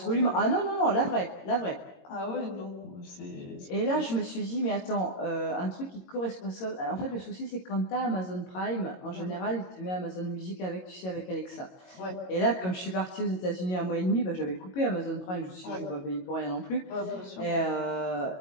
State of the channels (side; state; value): right; late; 22 ms